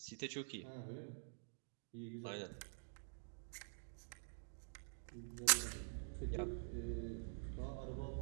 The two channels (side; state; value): left; silent; digital silence